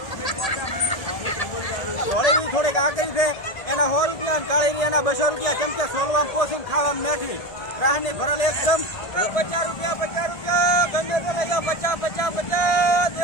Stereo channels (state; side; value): late; right; 1.8 ms